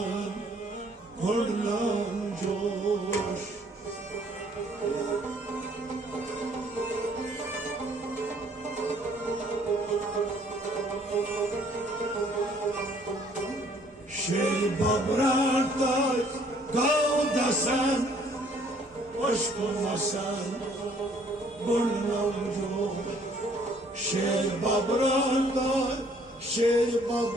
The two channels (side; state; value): both; normal; correlation 0.61